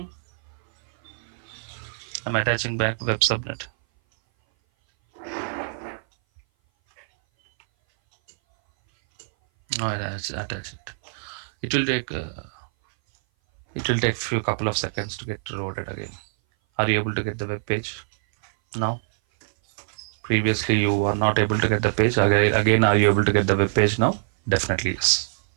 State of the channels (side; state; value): left; silent; 58 dB below the other